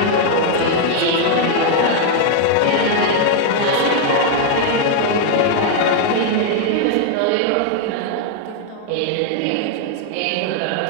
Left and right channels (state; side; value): different; both; correlation 0.00